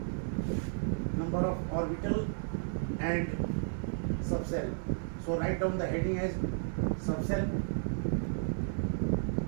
Number of orbital and subcell. So write down the heading as subcell.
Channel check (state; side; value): silent; left; 56 dB below the other